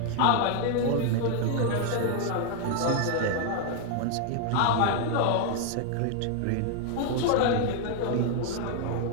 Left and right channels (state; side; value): different; both; correlation 0.00